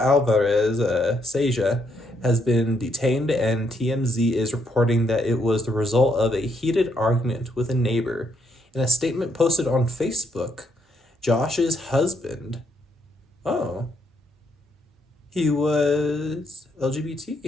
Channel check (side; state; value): both; normal; correlation 0.74